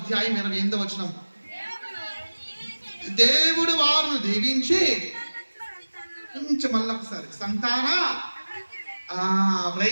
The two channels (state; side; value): inverted; both; correlation -1.00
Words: 28వ వచనం. దేవుడు వారిని దీవించి మళ్ళీ ఒకసారి సంతాన,